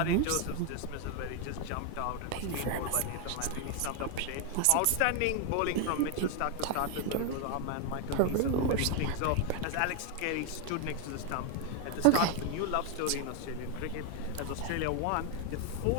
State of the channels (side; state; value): both; different; correlation 0.01